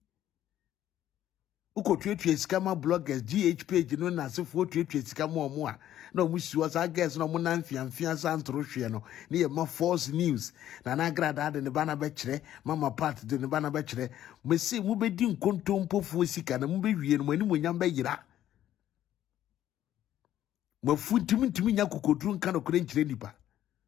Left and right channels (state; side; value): quieter; right; 12.1 dB